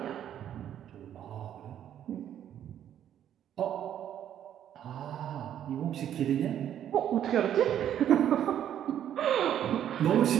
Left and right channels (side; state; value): left; quieter; 10.4 dB